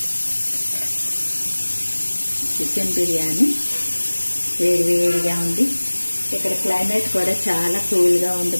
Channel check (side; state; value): both; inverted; correlation -1.00